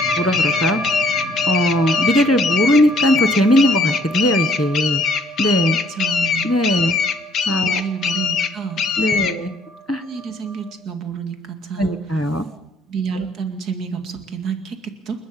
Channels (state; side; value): normal; both; correlation 0.62